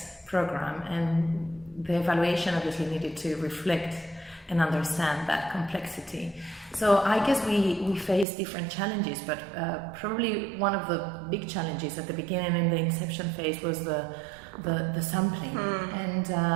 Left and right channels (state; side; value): drops out; left; at 8.2 s